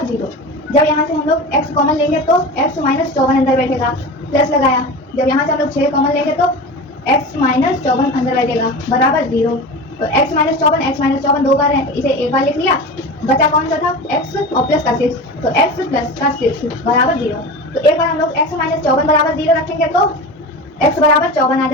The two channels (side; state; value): both; normal; correlation 0.29